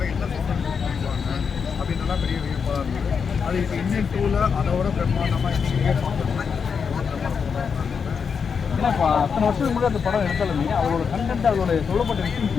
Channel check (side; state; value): right; quieter; 6.2 dB